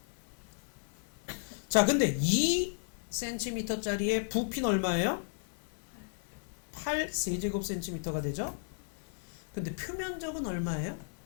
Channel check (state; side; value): silent; right; 55 dB below the other